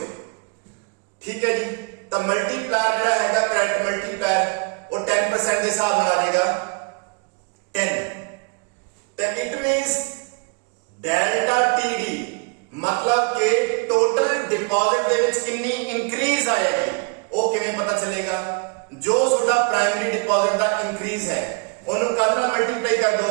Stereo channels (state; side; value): quieter; left; 35.0 dB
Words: ਠੀਕ ਹੈ ਜੀ, ਤਾਂ ਮਲਟੀਪਲਾਇਰ ਜਿਹੜਾ ਹੈਗਾ ਕਰੰਟ ਮਲਟੀਪਲਾਇਰ ਉਹ 10% ਦੇ ਹਿਸਾਬ ਨਾਲ ਆ ਜਾਏਗਾ 10। ਤਾਂ ਇਟ ਮੀਨਸ ਡੈਲਟਾ TD मतलब कि टोटल डिपॉजिट ਦੇ ਵਿੱਚ ਕਿੰਨੀ ਇੰਕਰੀਜ਼ ਆਏਗੀ ਉਹ ਕਿਵੇਂ ਪਤਾ ਚੱਲੇਗਾ? ਜੋ ਤੁਹਾਡਾ ਪ੍ਰਾਇਮਰੀ ਡਿਪੋਜ਼ਿਟ ਦਾ ਇੰਕਰੀਜ਼ ਹੈ ਉਹਨੂੰ ਕਰਨਾ ਮਲਟੀਪਲਾਈ ਕਰ